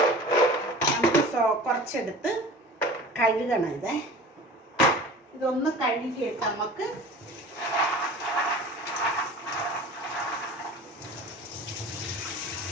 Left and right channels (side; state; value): both; normal; correlation 0.40